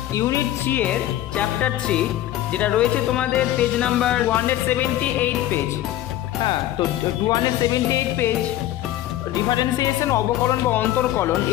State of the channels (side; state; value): right; quieter; 13.6 dB